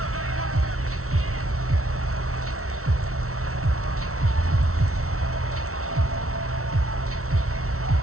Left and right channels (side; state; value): left; late; 0.63 ms